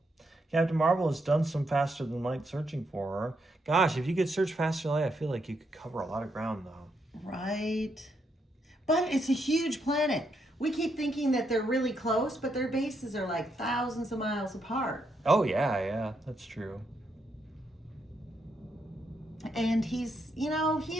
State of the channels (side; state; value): both; normal; correlation 0.79